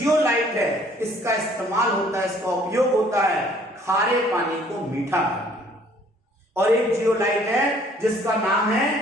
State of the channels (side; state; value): both; normal; correlation 0.59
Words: है इसका इस्तेमाल होता है, इसका उपयोग होता है खारे पानी को मीठा करने। और एक जियोलाइट है जिसका नाम है